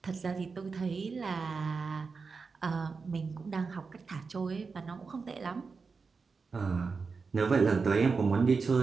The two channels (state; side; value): quieter; left; 4.8 dB